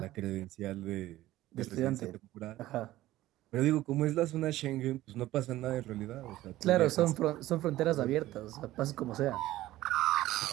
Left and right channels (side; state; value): left; quieter; 15.7 dB